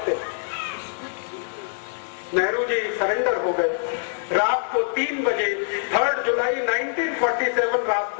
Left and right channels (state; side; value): silent; right; digital silence